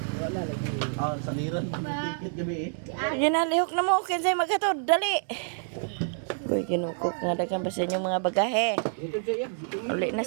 Wala lagi. Ah, saniran tiket gabi eh. Ginalihok na mo, kinsay maghatod, dali. Uy, kinukok nga dagan pa sa inyong mga bagahe. Dito siya. Uli na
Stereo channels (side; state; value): left; silent; 59 dB below the other